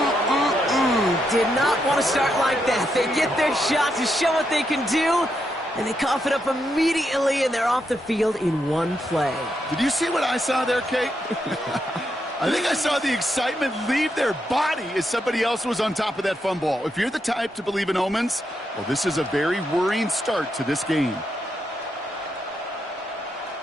Did not want to start like that. They get their shot to show what they can do, and they cough it up immediately, and they're off the field in one play. Did you see what I saw there, Kate? I think I saw the excitement leave their body as somebody else was on top of that fumble. If you're the type to believe in omens, well, this is a very worrying start to this game.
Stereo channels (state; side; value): normal; both; correlation 0.81